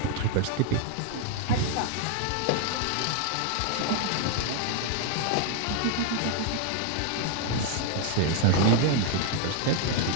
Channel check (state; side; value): different; both; correlation 0.00